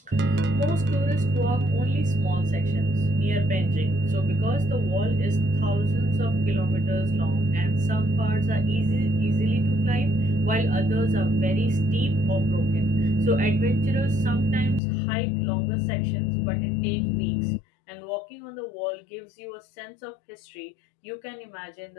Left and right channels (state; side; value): drops out; right; at 14.8 s